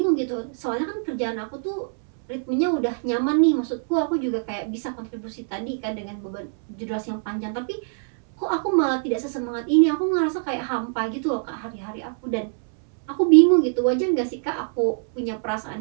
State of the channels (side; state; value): left; silent; 63 dB below the other